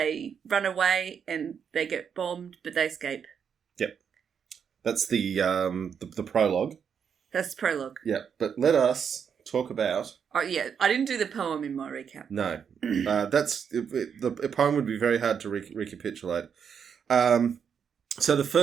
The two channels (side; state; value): left; quieter; 7.2 dB